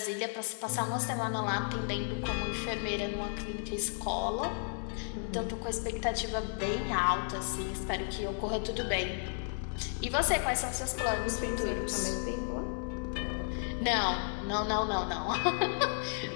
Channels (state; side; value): silent; right; 56 dB below the other